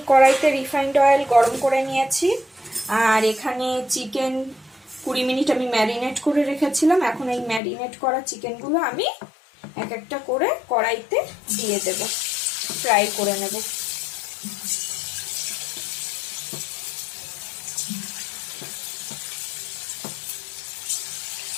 কড়াইতে রিফাইন্ড অয়েল গরম করে নিয়েছি, আর এখানে চিকেন 20 মিনিট আমি ম্যারিনেট করে রেখেছিলাম। এখন এই ম্যারিনেট করা চিকেনগুলো আমি এক একটা করে কড়াইতে দিয়ে দেব, ফ্রাই করে নেব।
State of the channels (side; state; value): right; drops out; at 7.6 s